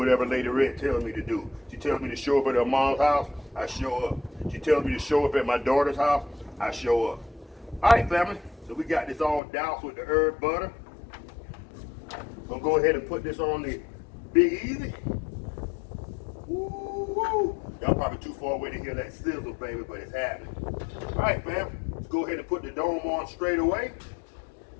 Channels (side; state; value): right; drops out; at 9.4 s